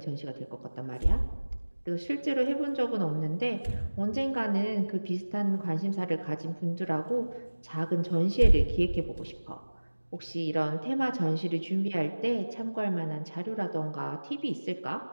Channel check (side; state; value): both; inverted; correlation -1.00